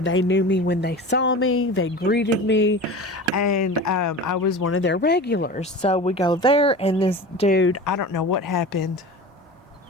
knew me when they saw me. They greeted me, and I was one of their regulars. So we go there, and this dude, I don't know what happened.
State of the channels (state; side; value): normal; both; correlation 0.33